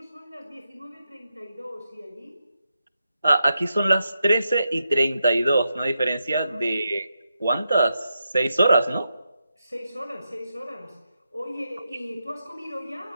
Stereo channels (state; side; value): inverted; both; correlation -0.86